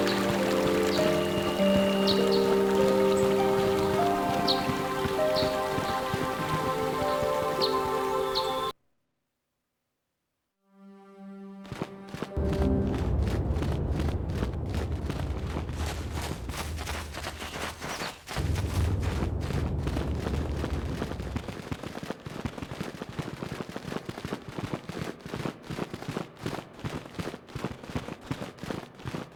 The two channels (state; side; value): identical; both; correlation 1.00